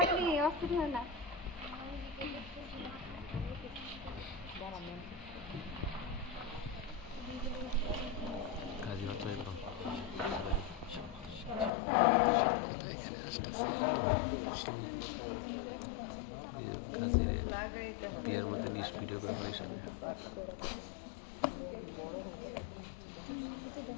অস্থির হয় না কাজী হচ্ছে একদম লাগাইতে হবে এর মধ্যে লিস্ট ভিডিও করে আমার সামনে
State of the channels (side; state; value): right; drops out; at 11.7 s